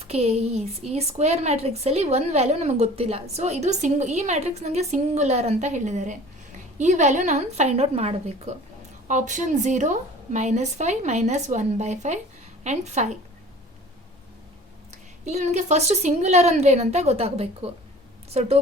K is, ಈ ಸ್ಕ್ವೇರ್ ಮ್ಯಾಟ್ರಿಕ್ಸಲ್ಲಿ ಒಂದು ವ್ಯಾಲ್ಯೂ ನಮಗೆ ಗೊತ್ತಿಲ್ಲ. ಸೊ ಇದು ಈ ಮ್ಯಾಟ್ರಿಕ್ಸ್ ನನಗೆ ಸಿಂಗುಲರ್ ಅಂತ ಹೇಳಿದ್ದಾರೆ. ಈ ವ್ಯಾಲ್ಯೂ ನಾನು ಫೈಂಡ್ ಔಟ್ ಮಾಡಬೇಕು. Option 0, -5, -1/5 and 5. ಇಲ್ಲಿ ನನಗೆ ಫಸ್ಟ್ ಸಿಂಗುಲರ್ ಅಂದರೆ ಏನಂತ ಗೊತ್ತಾಗಬೇಕು. ಸೊ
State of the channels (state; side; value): normal; both; correlation 0.45